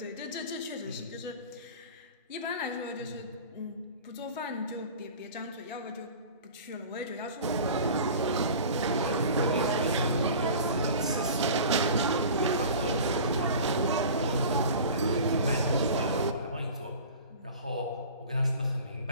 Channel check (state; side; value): inverted; both; correlation -0.40